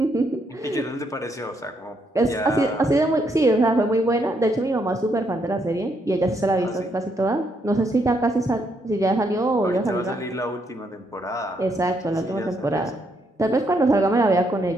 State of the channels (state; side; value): normal; both; correlation 0.75